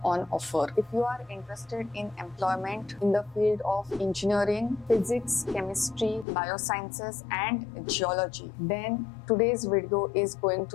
on offer. If you are interested in employment in the field of engineering, physics, chemistry, biosciences and geology, then today's video is going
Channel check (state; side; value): drops out; right; at 6.2 s